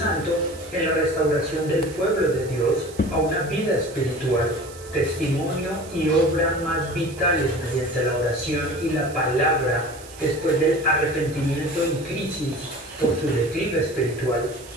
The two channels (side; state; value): right; noise; hiss, 19 dB below the sound